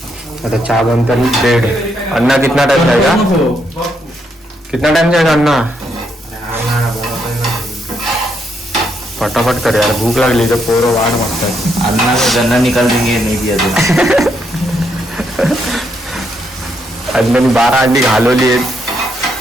आता चहा बनता ब्रेड. अन्ना कितना टाइम जाएगा? कितना टाइम जाएगा अन्ना? फटाफट कर यार, भूक लागली तर पोरं वाट मागतात. अन्ना का गन्ना निकाल देंगे नहीं दिया तो. अन्नाने 12 अंडी घालवली आहेत.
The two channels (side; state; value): both; normal; correlation 0.76